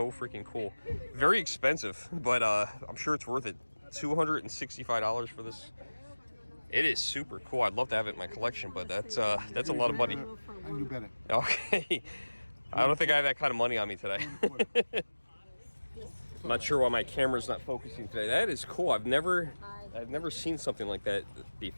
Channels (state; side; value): inverted; both; correlation -1.00